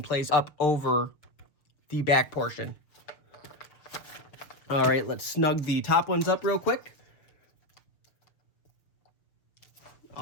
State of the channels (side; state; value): right; late; 6.7 ms